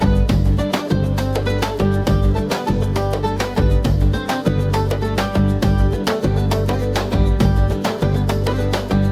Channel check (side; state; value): both; identical; correlation 1.00